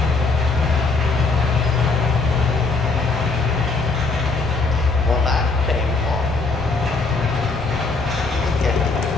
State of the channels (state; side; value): quieter; right; 3.9 dB